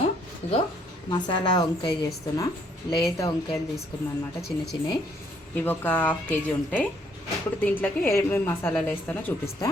ఇగో మసాలా వంకాయ చేస్తున్నా. లేత వంకాయలు తీసుకున్నాను అనమాట, చిన్న చిన్నవి. ఇవి ఒక హాఫ్ కేజీ ఉంటాయి. ఇప్పుడు దీంట్లోకి ఏమేమి మసాలాలు వేస్తానో చూపిస్తా.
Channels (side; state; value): both; normal; correlation 0.67